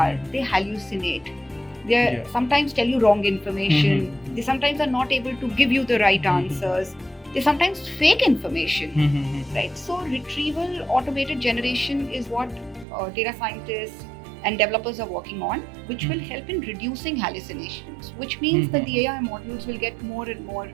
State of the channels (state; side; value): drops out; left; at 12.9 s